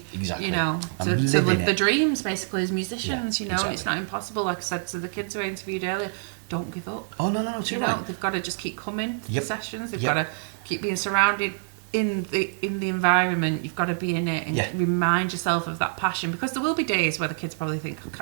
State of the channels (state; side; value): silent; left; digital silence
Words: be, exactly. you know, And to living live it. the dreams basically as musicians. Yeah, you know, exactly. it's not impossible. Like I said to the kids who I interviewed earlier, don't give up. Oh no, too You know, right. they've got to just keep coming to Yep. the sessions. They've Yep. got to keep being surrounded in the environment. You've got to be in it and Yeah. remind yourself of that passion, because there will be days where the kids probably think, I